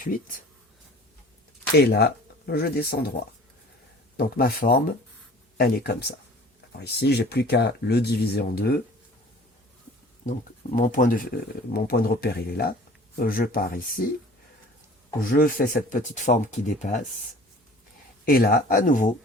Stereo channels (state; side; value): normal; both; correlation 0.46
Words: Et là, je descends droit. Donc ma forme, elle est comme ça. Alors ici, j'ai plus qu'à le diviser en deux. Donc mon point de repère, il est là. Je pars ici. Je fais cette petite forme qui dépasse. Et là, à nouveau,